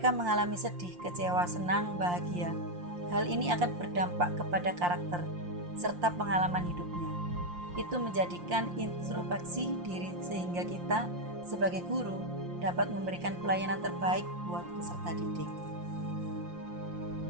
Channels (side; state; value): left; late; 5.7 ms